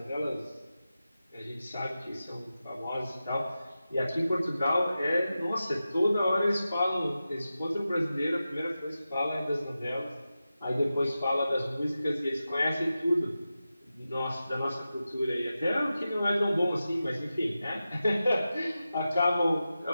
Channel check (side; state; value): both; inverted; correlation -0.93